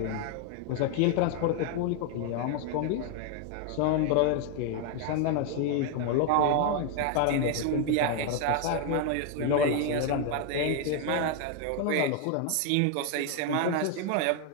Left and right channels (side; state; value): both; different; correlation 0.01